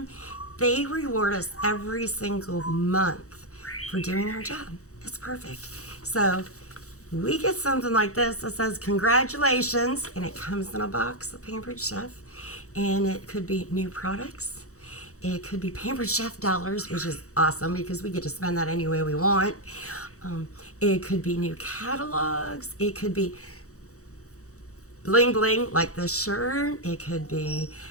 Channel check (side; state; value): right; late; 0.65 ms